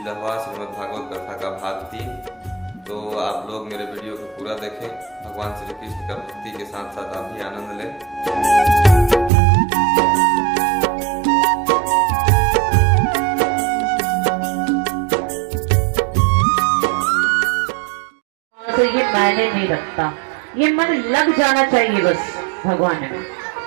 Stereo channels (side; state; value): left; drops out; at 9.3 s